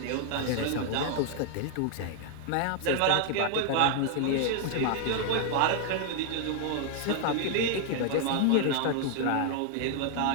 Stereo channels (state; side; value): different; both; correlation 0.00